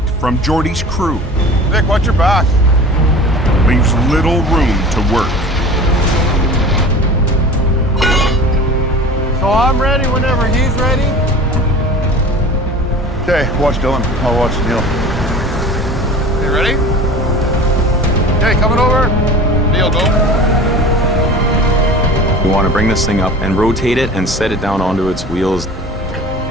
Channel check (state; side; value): normal; both; correlation 0.39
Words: from Jordy's crew, Nick, watch your back. leaves little room to work. So I'm ready whenever he's ready. Okay, watch Dylan. I'll watch Neil. You ready? Okay, coming over. Neil, go. We want to bring this thing up and rotate it and set it down onto its wheels.